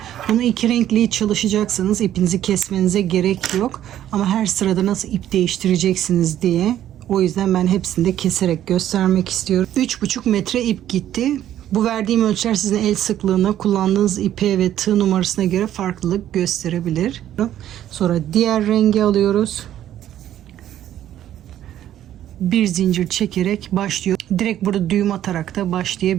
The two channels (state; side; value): quieter; left; 11.7 dB